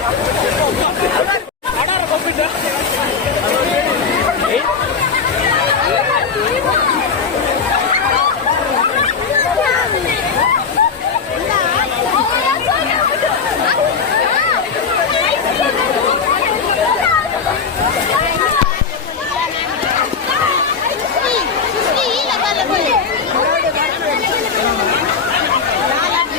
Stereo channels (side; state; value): right; quieter; 5.6 dB